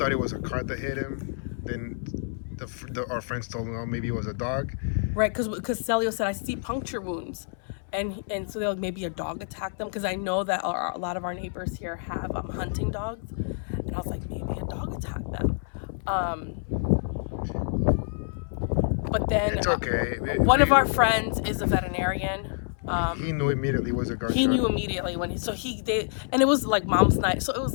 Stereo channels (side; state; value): right; silent; 60 dB below the other